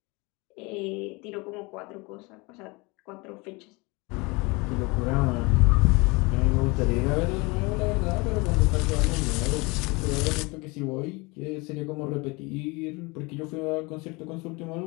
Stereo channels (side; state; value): right; quieter; 26.2 dB